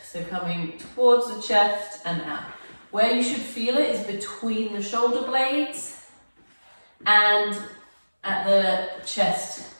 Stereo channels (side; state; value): both; inverted; correlation -1.00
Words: So coming towards the chest and out. Where you should feel it is between the shoulder blades and at the chest